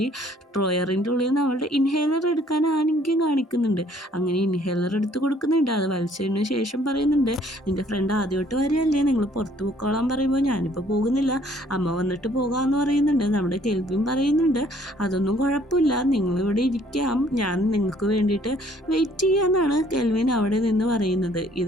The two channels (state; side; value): normal; both; correlation 0.60